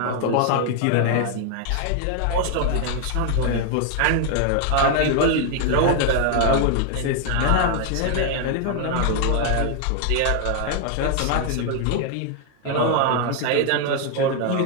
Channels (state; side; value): different; both; correlation 0.00